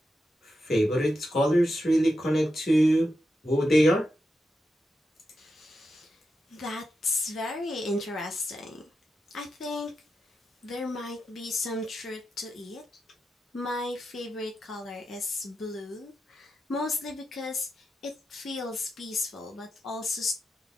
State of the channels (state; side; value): normal; both; correlation 0.88